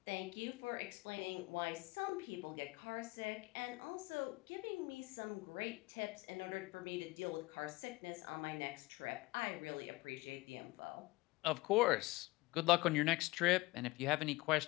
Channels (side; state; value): right; quieter; 21.4 dB